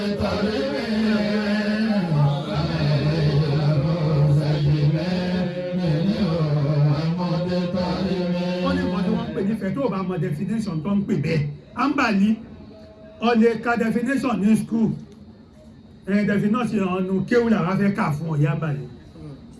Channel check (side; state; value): both; identical; correlation 1.00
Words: tàbí ó ní nǹkan tí wọ́n ń pè nífẹ̀ẹ́ tó bá mọ definition tó ń pè bẹ́ẹ̀ ambali ó lè ka definition ní school definition ọ̀nù kéwù làwọn fẹ́ kà fún ọ̀yá ambali